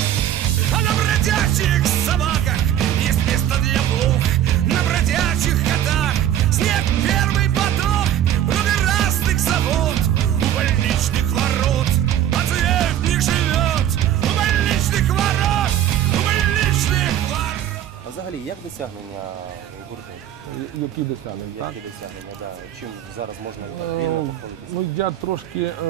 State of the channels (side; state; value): left; quieter; 11.2 dB